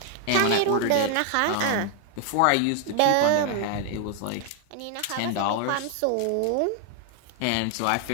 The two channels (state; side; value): different; both; correlation 0.00